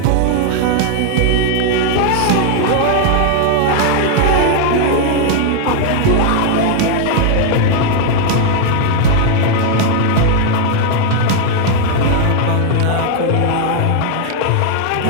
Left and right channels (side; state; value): both; different; correlation 0.00